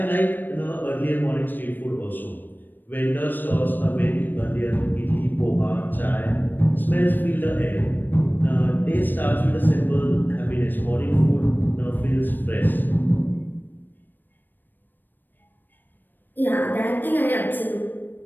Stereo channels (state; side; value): late; right; 0.092 ms